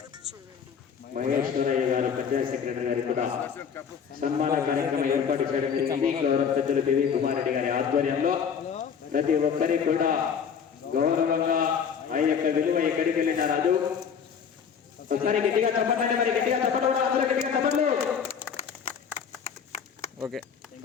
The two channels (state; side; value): quieter; right; 7.1 dB